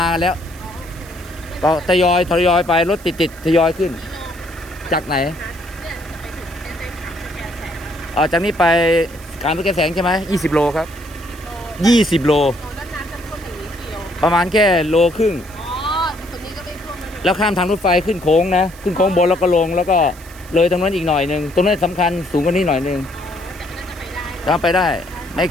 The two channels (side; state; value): right; noise; hiss, 22 dB below the sound